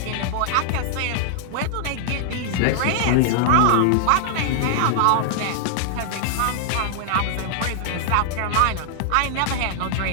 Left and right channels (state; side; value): different; both; correlation -0.01